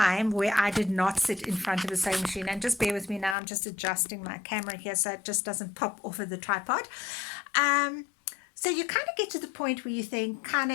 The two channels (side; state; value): right; drops out; at 3.4 s